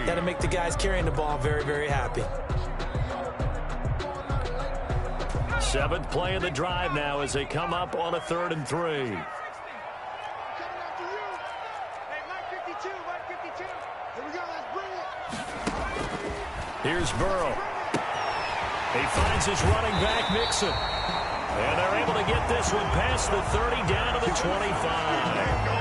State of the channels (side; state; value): both; identical; correlation 1.00